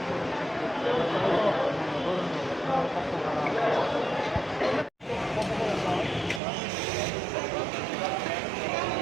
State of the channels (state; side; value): drops out; left; at 6.4 s